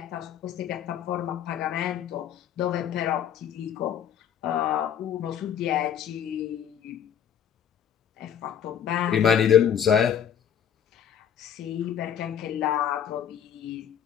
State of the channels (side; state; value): right; quieter; 8.9 dB